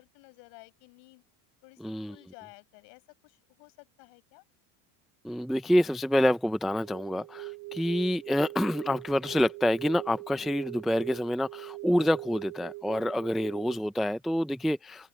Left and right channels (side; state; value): both; normal; correlation 0.96